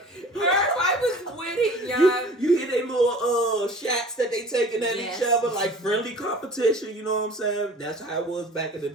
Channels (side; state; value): both; normal; correlation 0.45